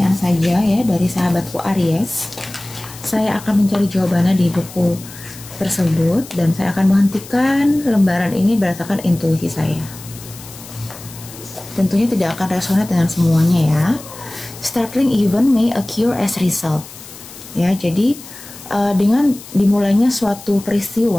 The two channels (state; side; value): noise; left; hiss, 17 dB below the sound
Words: saja ya dari sahabatku Aries. Saya akan mencari jawabannya di buku tersebut dan saya akan menghentikan lembaran ini berdasarkan intuisi saya. Tentunya tidak akan resonate dengan semuanya ya. Startling event may occur as result. Ya, jadi dengan dimulainya suatu